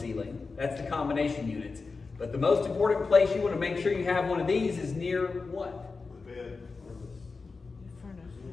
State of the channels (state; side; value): quieter; right; 4.3 dB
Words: That's the combination units. But the most important place you want to make sure you have one of these is near what? The bed.